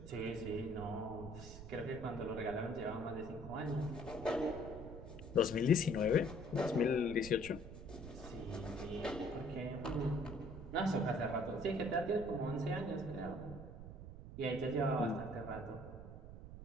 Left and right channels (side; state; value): right; noise; rumble, 12 dB below the sound